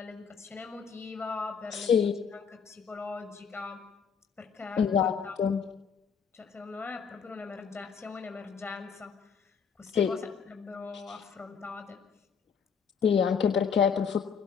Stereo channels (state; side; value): quieter; right; 6.7 dB